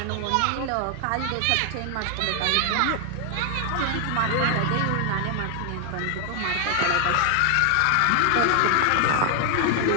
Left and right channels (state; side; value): different; both; correlation 0.00